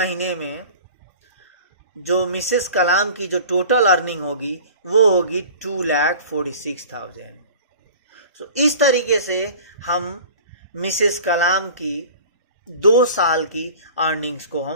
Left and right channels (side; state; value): both; inverted; correlation -0.42